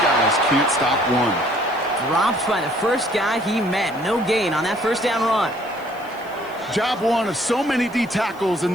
can't stop one. Dropped by the first guy he met. No gain on that first down run. Job one of so many D tackles in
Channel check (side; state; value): left; noise; hiss, 26 dB below the sound